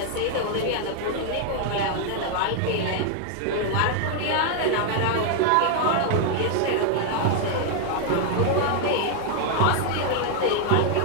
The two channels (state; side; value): different; both; correlation 0.00